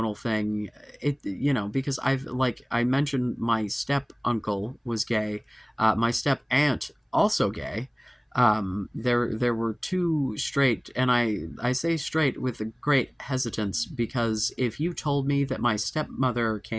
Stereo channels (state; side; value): identical; both; correlation 1.00